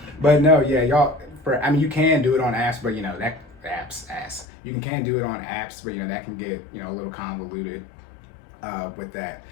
but no, yeah, y'all. I mean, you can do it on apps, but you know that apps. You can do it on apps, but you know that can get a little convoluted with that.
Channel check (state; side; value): drops out; right; at 4.5 s